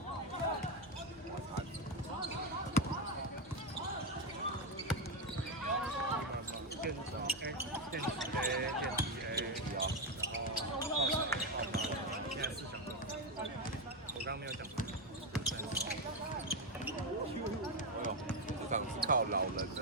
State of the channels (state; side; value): normal; both; correlation 0.09